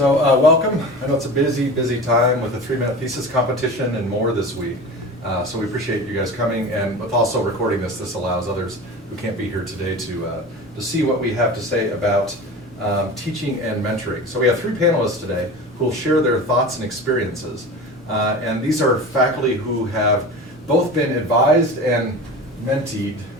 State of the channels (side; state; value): both; normal; correlation 0.33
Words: I know it's a busy time with a 3-minute thesis competition and more this week. So we appreciate you guys coming, and with also recording this allows others who can't be here today to see what we have to say about teaching and mentoring. So we have 3 panelists today who will share their thoughts and experiences. And these are faculty who have both been advised and